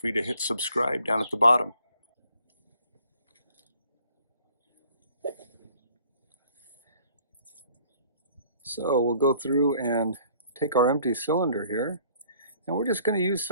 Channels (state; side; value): inverted; both; correlation -0.57